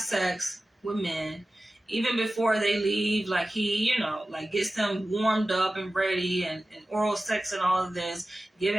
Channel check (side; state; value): both; normal; correlation 0.96